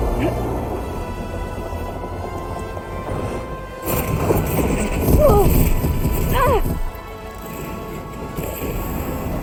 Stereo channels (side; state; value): both; identical; correlation 1.00